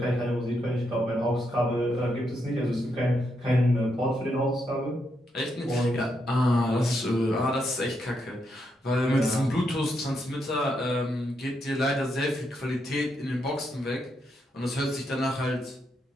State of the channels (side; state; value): both; normal; correlation 0.80